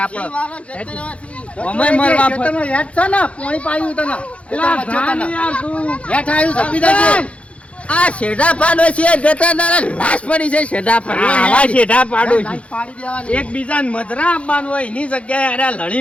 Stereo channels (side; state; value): right; late; 0.062 ms